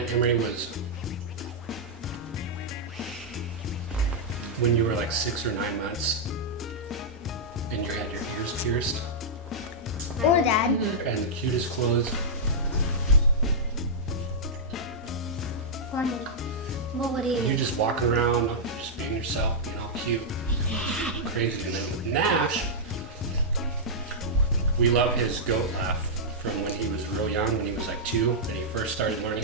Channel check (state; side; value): normal; both; correlation -0.09